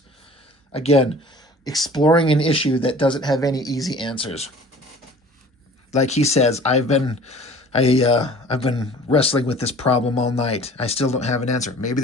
Again, exploring an issue that doesn't have any easy answers. Like he says, I've been wrestling with this problem all night. I still don't have an answer. Maybe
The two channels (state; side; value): normal; both; correlation 0.46